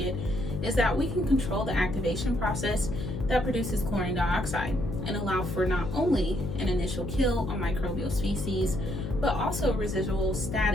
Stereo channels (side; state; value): left; noise; hum, 5 dB below the sound